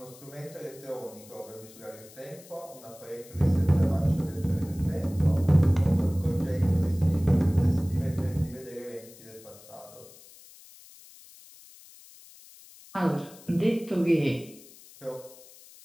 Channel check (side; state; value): left; noise; hiss, 21 dB below the sound